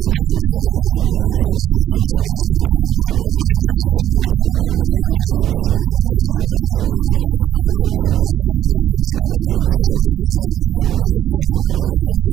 défendé woon nañu kër di leen laaj ndax ñi ngi soxla kër yooyu ba léegi ku ca wax ne léegi soxla na kër googu ba léegi ñu fexe nuñ ko jëlee yóbbu ko ci kër googu ñi nga xam ne nag soxlaatuñ kër ñu xool lañ soxla ñu enregistré ko xool ña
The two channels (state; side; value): quieter; left; 11.5 dB